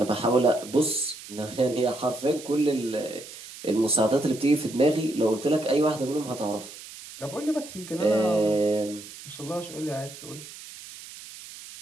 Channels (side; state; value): right; noise; hiss, 15 dB below the sound